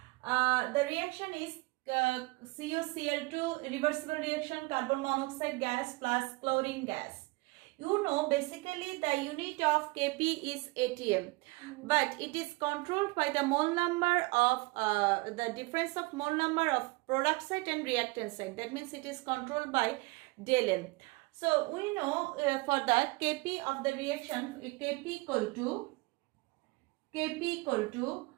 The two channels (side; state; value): left; quieter; 24.6 dB